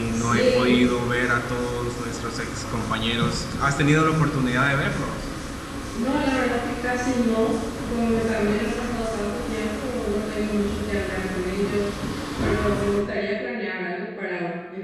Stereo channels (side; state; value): both; identical; correlation 1.00